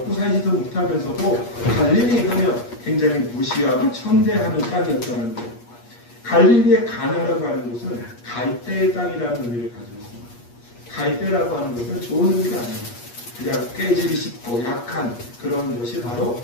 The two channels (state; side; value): late; right; 8.4 ms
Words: 살지도 못하면서도 갈릴리 하면 굉장히 무시하고 천대하는 땅이었다는 거예요. 갈릴리의 가나라고 하는 곳은 갈대의 땅이라는 의미를 가지고 있습니다. 갈대라고 하는 것은 좋은 의미가 아니에요. 그냥 깨지기 쉽고 약한 그런 것이 바로